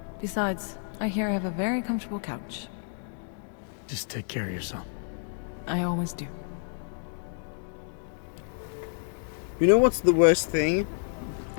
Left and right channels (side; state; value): right; silent; digital silence